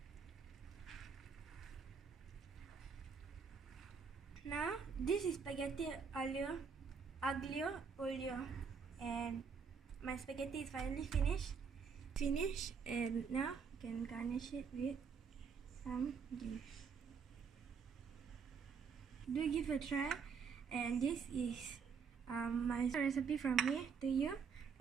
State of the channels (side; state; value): left; quieter; 6.0 dB